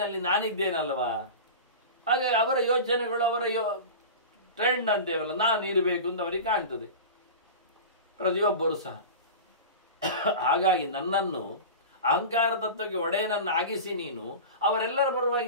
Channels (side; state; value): both; inverted; correlation -0.30